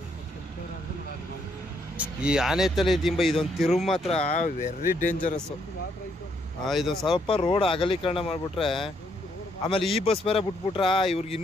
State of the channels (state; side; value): normal; both; correlation 0.73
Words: ಈ ಆನೆ ತಲೆ ದಿಂಬ ಇದೊಂದು ತಿರುವು ಮಾತ್ರ ವೆರಿ ಡೇಂಜರಸ್ಸು. ಇದೊಂದು ಸ್ವಲ್ಪ ರೋಡ್ ಅಗಲೀಕರಣ ಮಾಡಿಬಿಟ್ರೆ, ಆಮೇಲೆ ಈ ಬಸ್ ಬೇರೆ ಬಿಟ್ಬಿಟ್ರ ಇವ್ರಿಗೆ